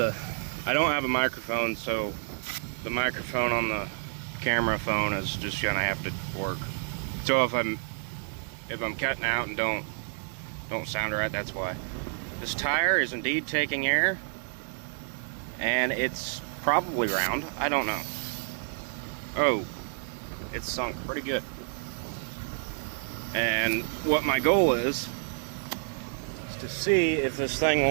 don't have a microphone, so the microphone on the camera phone is just gonna have to work. So if I'm cutting out and don't sound right, that's why. This tire is indeed taking air, and it's probably round. I don't know. Oh, it's sunk pretty good. And what my goal is to see if this thing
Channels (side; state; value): left; silent; 58 dB below the other